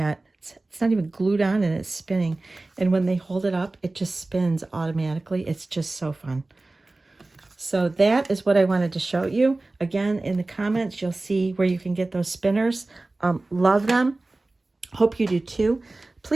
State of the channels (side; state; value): left; quieter; 3.0 dB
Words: It's not even glued on and it's spinning. And when they hold it up, it just spins automatically. It's just so fun. So that is what I wanted to show you. Again, in the comments, you'll see where you can get those spinners. Love them. Hope you do too.